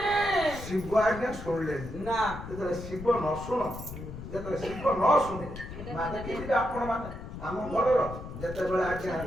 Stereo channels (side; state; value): left; noise; rumble, 10 dB below the sound